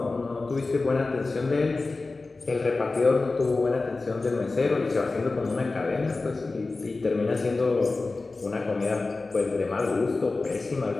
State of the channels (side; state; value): right; quieter; 3.5 dB